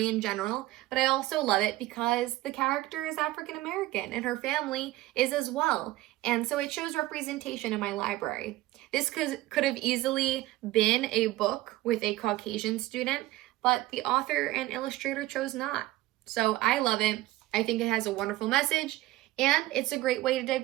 in general, but I also love it because the character is African American and her family is as well. And so it shows representation in my library. This could have easily been a book with a Caucasian student, but the author and illustrator chose not. So I love it. I think it has a wonderful message, and it's a great way to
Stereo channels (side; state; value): left; quieter; 17.3 dB